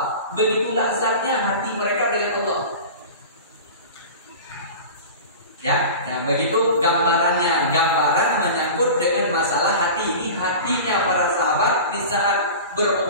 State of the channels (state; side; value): inverted; both; correlation -0.34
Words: Begitulah zatnya hati mereka dengan Allah. Ya, begitu gambarannya. Gambaran menyangkut dengan masalah hati. Ini hatinya para sahabat di saat